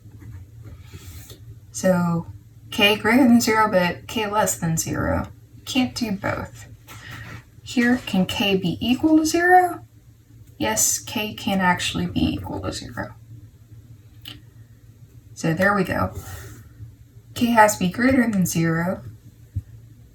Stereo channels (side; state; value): both; identical; correlation 1.00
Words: So k greater than 0, but k less than 0. Can't do both. Here, can k be equal to 0? Yes, k can actually be equal to 0. So there we go. K has to be greater than 0,